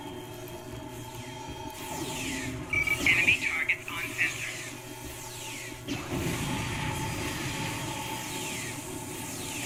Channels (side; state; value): both; identical; correlation 1.00